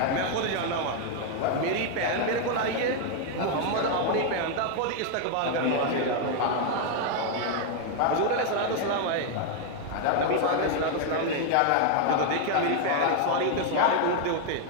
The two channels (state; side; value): different; both; correlation 0.01